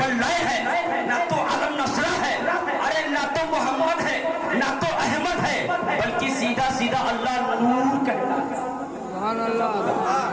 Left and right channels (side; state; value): both; identical; correlation 1.00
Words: है, ना तो अलम नसरा है, अरे ना तो मोहम्मद है, ना तो अहमद है, बल्कि सीधा सीधा अल्लाह नूर कहता है।